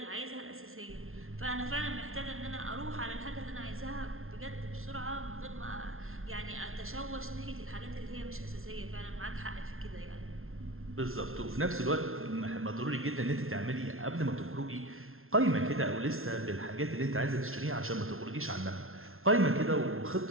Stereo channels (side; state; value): left; late; 0.61 ms